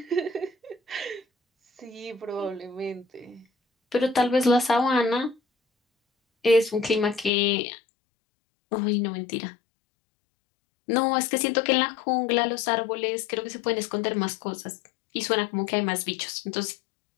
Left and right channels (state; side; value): drops out; right; at 7.3 s